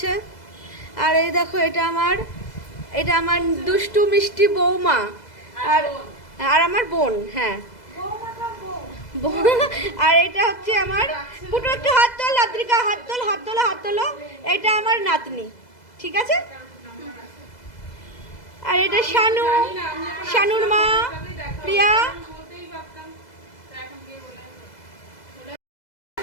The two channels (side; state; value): right; late; 2.0 ms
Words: আর এই দেখো, এটা আমার দুষ্টু মিষ্টি বৌমা, আর আর আমার বোন। হ্যাঁ, আর এটা হচ্ছে আমার পুটু, একটু হাত তোল, আদ্রিকা হাত তোল, হাত তোলো, হাত তোলো। এটা আমার নাতনি, ঠিক আছে? আর এটা শানু, শানুর মা প্রিয়া।